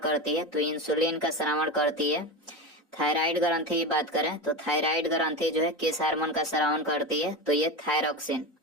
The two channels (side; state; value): both; normal; correlation 0.22